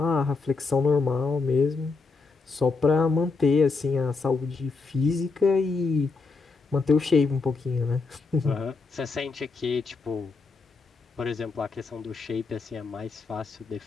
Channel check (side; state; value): right; quieter; 4.3 dB